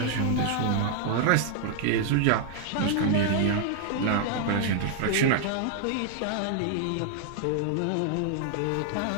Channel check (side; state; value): both; different; correlation 0.00